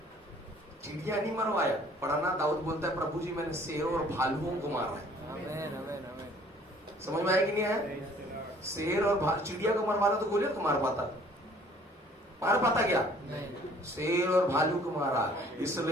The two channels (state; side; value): normal; both; correlation 0.56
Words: चिड़िया नहीं मरवाया। पढ़ाना, दाऊद बोलता है प्रभु जी मैंने शेरों और भालुओं को मारा है। आमीन, आमीन, आमीन। समझ में आया कि नहीं आया? शेर और चिड़िया को मरवाना तो गोलियों को मार पाता, मार पाता क्या? शेर और भालू को मारा।